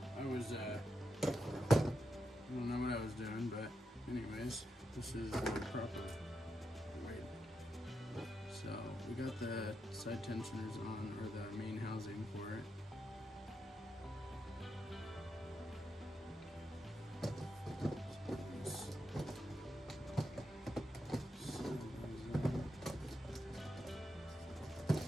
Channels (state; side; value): normal; both; correlation 0.85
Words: I don't know what I was doing, but anyways, this is the proper way. So we got the side tensioners on, or the main housing for it.